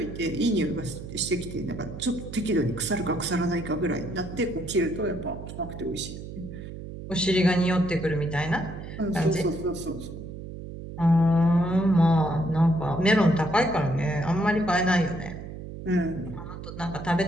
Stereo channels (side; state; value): right; noise; hum, 10 dB below the sound